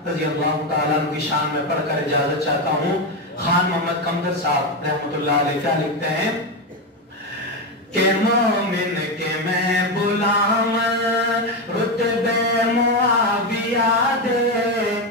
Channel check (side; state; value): both; normal; correlation 0.11